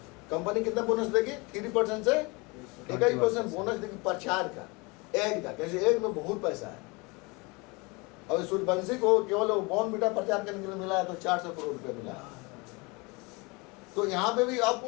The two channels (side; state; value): right; quieter; 27.2 dB